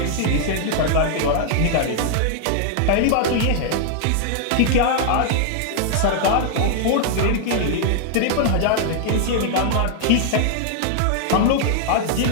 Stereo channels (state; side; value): different; both; correlation -0.01